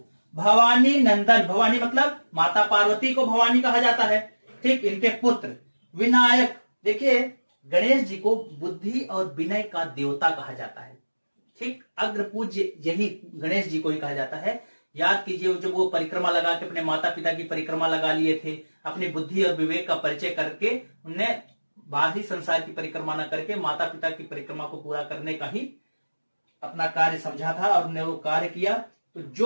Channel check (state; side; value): inverted; both; correlation -1.00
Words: भवानी नंदन, भवानी मतलब माता पार्वती को भवानी कहा जाता है, ठीक, इनके पुत्र। विनायक, देखिए गणेश जी को बुद्धि और विनय का देवता कहा जाता है, ठीक, अग्र पूज्य यही गणेश जी को ही कहा जाता है। याद कीजिए जब वो परिक्रमा लगा के अपने माता पिता की परिक्रमा लगा लिए थे, अपनी बुद्धि और विवेक का परिचय करके उनने बाहरी संसार की परिक्रमा न करके माता पिता की परिक्रमा को पूरा करने का ही अपना कार्य समझा था और उन्होंने वो कार्य किया। तो